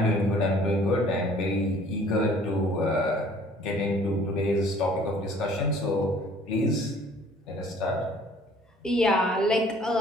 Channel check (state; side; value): normal; both; correlation 0.55